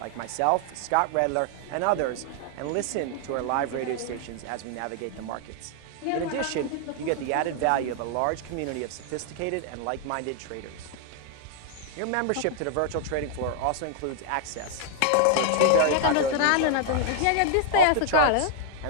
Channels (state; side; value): different; both; correlation 0.00